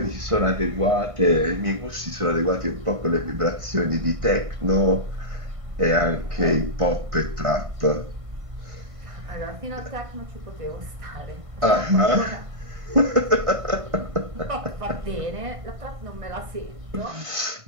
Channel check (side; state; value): left; late; 1.5 ms